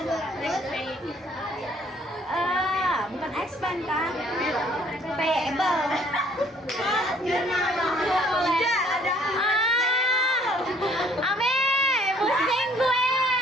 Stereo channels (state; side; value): normal; both; correlation 0.60